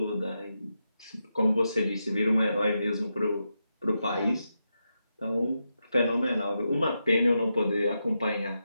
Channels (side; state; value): both; inverted; correlation -0.87